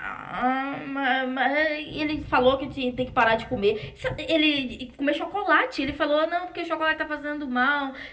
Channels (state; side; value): identical; both; correlation 1.00